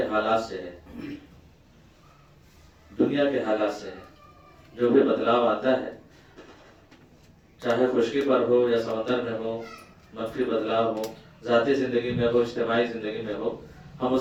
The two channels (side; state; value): both; identical; correlation 1.00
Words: حالات سے ہے، دنیا کے حالات سے ہے۔ جو بھی بدلاؤ آتا ہے، چاہے خشکی پر ہو یا سمندر میں ہو، منفی بدلاؤ ہو، ذاتی زندگی میں ہو، اجتماعی زندگی میں ہو، ہم